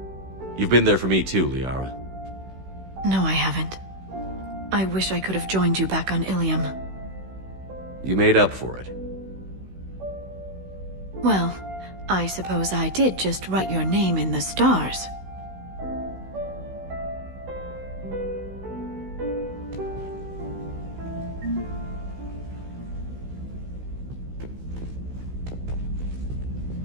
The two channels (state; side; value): late; left; 16 ms